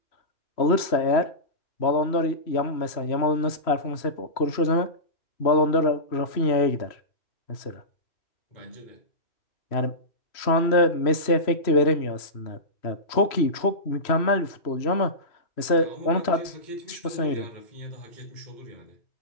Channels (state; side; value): late; right; 3.0 ms